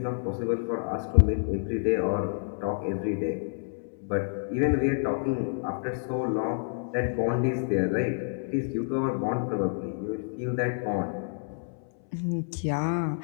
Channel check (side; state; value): right; silent; 59 dB below the other